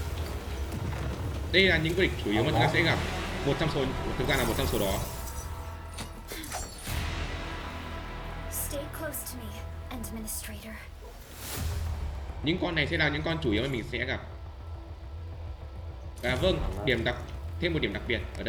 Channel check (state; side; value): identical; both; correlation 1.00